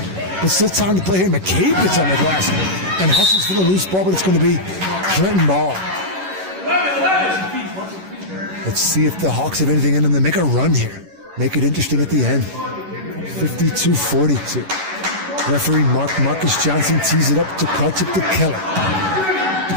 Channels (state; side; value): late; left; 11 ms